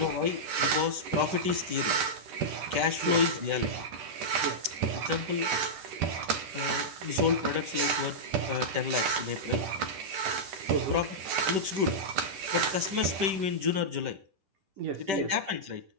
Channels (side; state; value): left; late; 10 ms